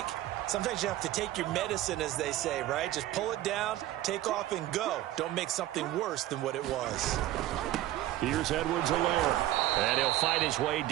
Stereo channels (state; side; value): quieter; left; 14.6 dB